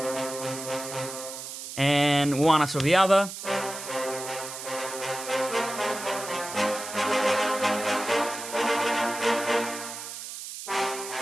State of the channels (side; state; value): right; noise; hiss, 9 dB below the sound